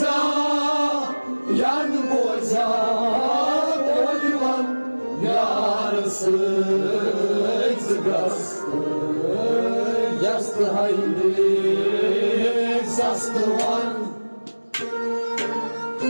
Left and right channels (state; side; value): inverted; both; correlation -1.00